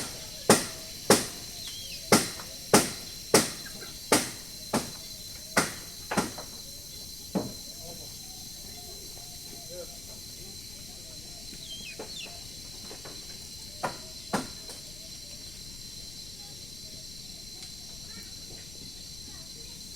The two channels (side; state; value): left; noise; rumble, 13 dB below the sound